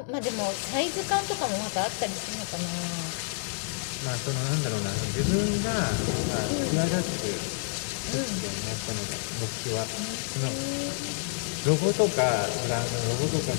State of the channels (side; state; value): right; silent; 59 dB below the other